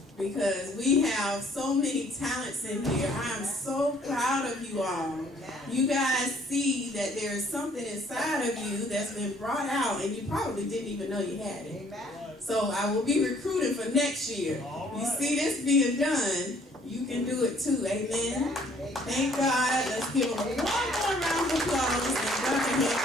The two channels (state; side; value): normal; both; correlation 0.61